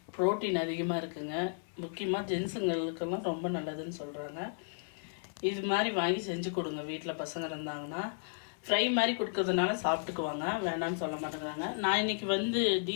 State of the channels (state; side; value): silent; right; 55 dB below the other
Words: ப்ரோட்டீன் அதிகமாக இருக்குங்க. முக்கியமாக ஜென்ஸுங்களுக்கெல்லாம் ரொம்ப நல்லதுன்னு சொல்கிறாங்க. இது மாதிரி வாங்கி செஞ்சு கொடுங்க. வீட்டில் பசங்க இருந்தாங்கன்னா ஃப்ரை மாதிரி கொடுக்கறதுனால சாப்பிட்டுக்குவாங்க, வேண்டாம்னு சொல்ல மாட்டேங்கிறாங்க. நான் இன்றைக்கி